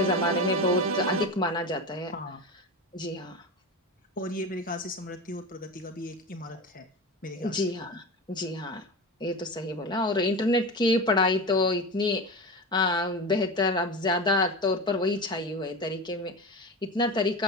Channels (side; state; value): both; normal; correlation 0.25